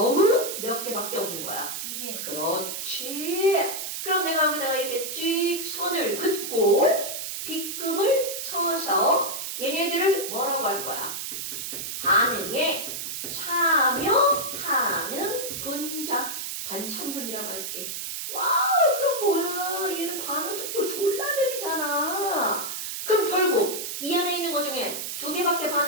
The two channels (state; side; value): noise; right; hiss, 5 dB below the sound